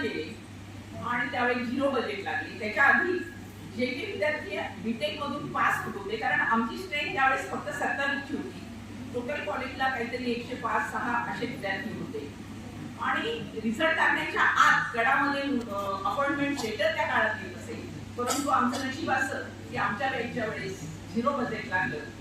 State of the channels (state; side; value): identical; both; correlation 1.00